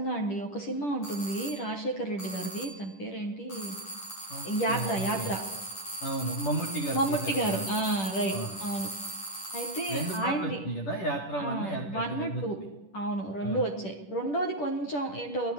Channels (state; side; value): late; right; 10 ms